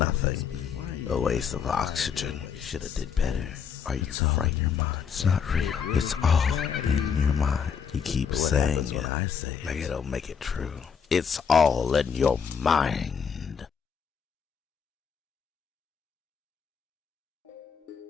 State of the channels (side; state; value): right; quieter; 6.9 dB